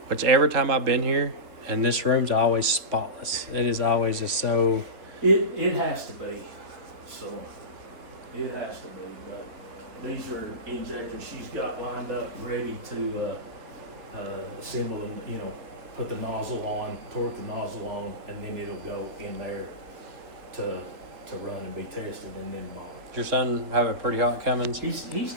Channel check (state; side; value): late; left; 3.7 ms